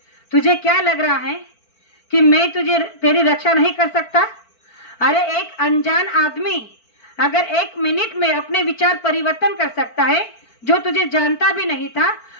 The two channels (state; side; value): late; right; 4.5 ms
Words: तुझे क्या लग रहा है कि मैं तेरी रक्षा नहीं कर सकता? अरे एक अनजान आदमी अगर 1 मिनट में अपने विचार परिवर्तन कर सकता है, जो तुझे जानता भी नहीं था,